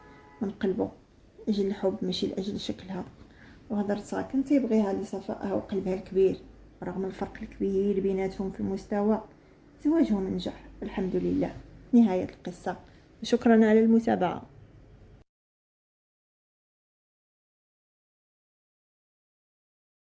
من قلبه أجل الحب ماشي لأجل شكلها، وهضرتها كان تيبغيها لصفائها وقلبها الكبير. رغم الفرق الكبير بيناتهم في المستوى، زواجهم نجح الحمد لله. نهاية القصة، شكرا على المتابعة.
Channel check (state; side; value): identical; both; correlation 1.00